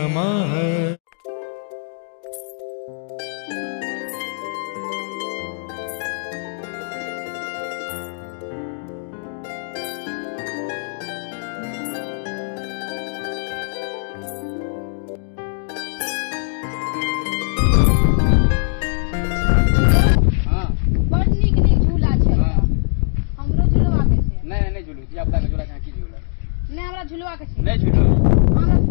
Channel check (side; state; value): right; silent; digital silence